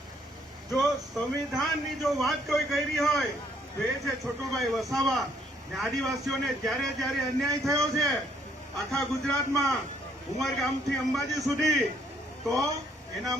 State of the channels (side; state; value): both; normal; correlation 0.67